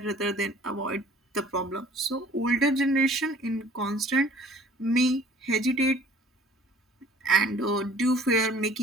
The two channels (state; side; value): normal; both; correlation 0.52